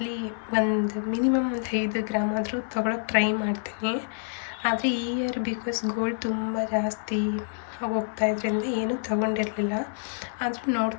ಒಂದು ಮಿನಿಮಮ್ 5 ಗ್ರಾಮ್ ಆದರೂ ತೊಗೊಳಕ್ಕೆ ಟ್ರೈ ಮಾಡ್ತೀನಿ. ಆದರೆ ಈ ಇಯರ್ ಬಿಕಾಸ್ ಗೋಲ್ಡ್ ತುಂಬ ಜಾಸ್ತಿ ಹೋಗ್ತಾಯಿದ್ರಿಂದ ಏನೂ ತೊಗೊಂಡಿರಲಿಲ್ಲ. ಆದರೂ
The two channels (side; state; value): right; silent; digital silence